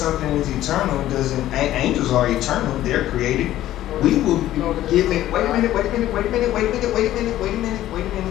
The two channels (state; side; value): quieter; right; 13.7 dB